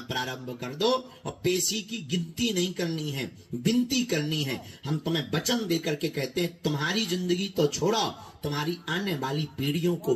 प्रारंभ कर दो। और पेशी की गिनती नहीं करनी है, विनती करनी है। हम तुम्हें वचन देकर के कहते हैं, तुम्हारी जिंदगी तो छोड़ो, तुम्हारी आने वाली पीढ़ियों को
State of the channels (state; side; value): identical; both; correlation 1.00